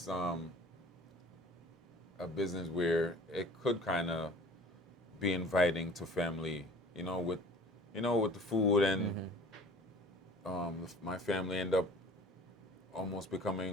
a business where it could kind of be inviting to family, with the food, and my family end up almost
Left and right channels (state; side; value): normal; both; correlation 0.46